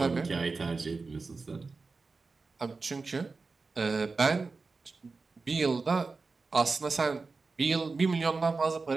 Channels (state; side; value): quieter; left; 4.1 dB